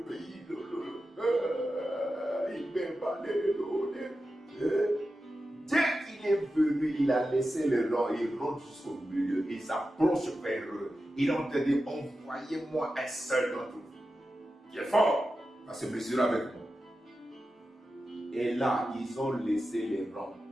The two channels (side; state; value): both; normal; correlation 0.92